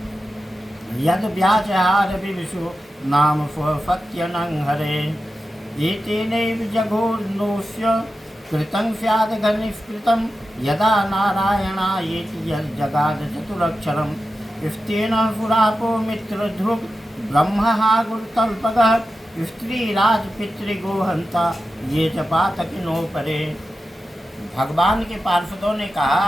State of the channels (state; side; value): normal; both; correlation 0.92